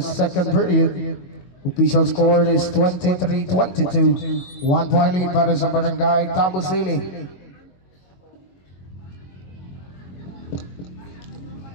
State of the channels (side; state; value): right; late; 22 ms